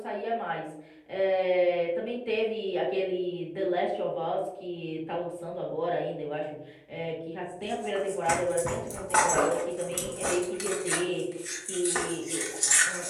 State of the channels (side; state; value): both; identical; correlation 1.00